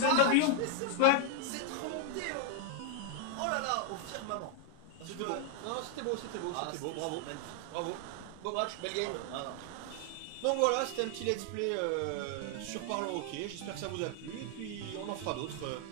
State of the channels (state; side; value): different; both; correlation 0.00